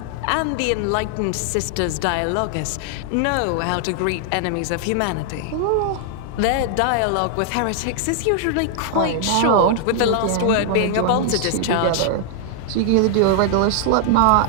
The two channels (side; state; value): both; different; correlation 0.00